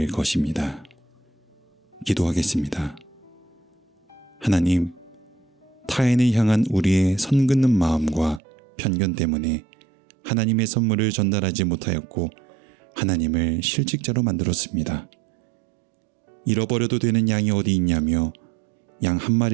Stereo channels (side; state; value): left; drops out; at 8.4 s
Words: 것입니다. 기도하겠습니다. 하나님, 타인을 향한 우리의 선 긋는 마음과 편견 때문에 하나님의 선물을 전달하지 못하였고 하나님을 실직자로 만들었습니다. 잃어버려도 되는 양이 어디 있냐며 양 한